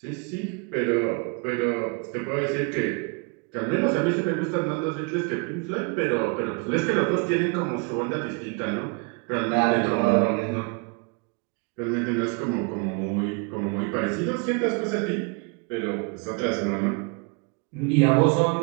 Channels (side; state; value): left; quieter; 32.4 dB